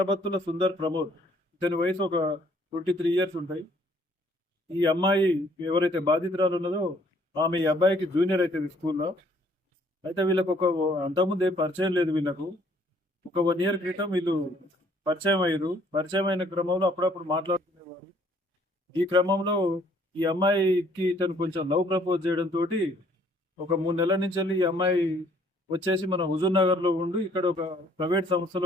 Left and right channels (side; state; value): both; normal; correlation 0.62